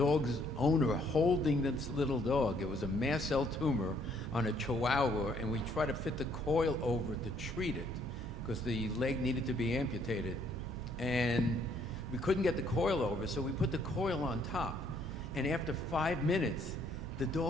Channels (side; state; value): both; normal; correlation 0.66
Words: owner holding this little dog. It was a mast cell tumor on a Chihuahua, and we tried to fit the coil over to treat it because the leg needed to be amputated. And we couldn't get the coil over, so we put the coil on top. And after 5 minutes,